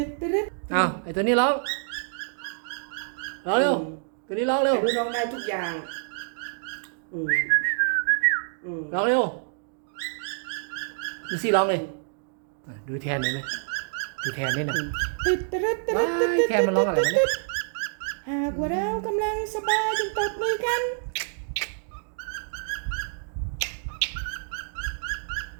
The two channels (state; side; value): silent; left; digital silence